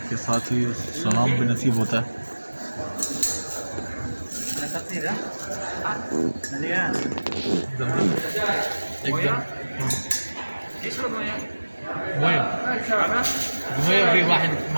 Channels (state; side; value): inverted; both; correlation -1.00